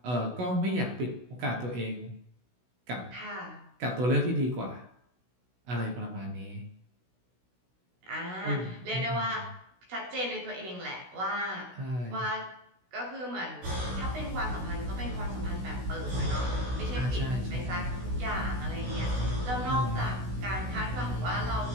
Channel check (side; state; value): left; late; 16 ms